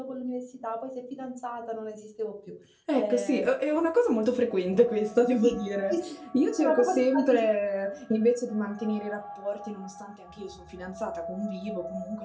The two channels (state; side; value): identical; both; correlation 1.00